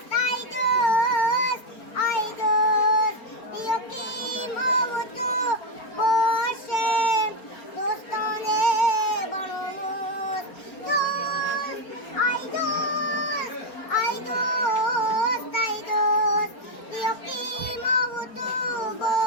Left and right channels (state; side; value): late; right; 4.3 ms